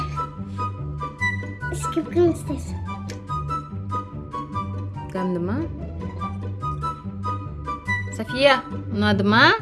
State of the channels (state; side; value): identical; both; correlation 1.00